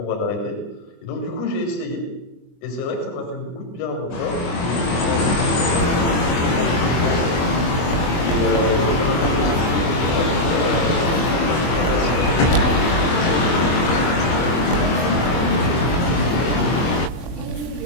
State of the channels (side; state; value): right; late; 24 ms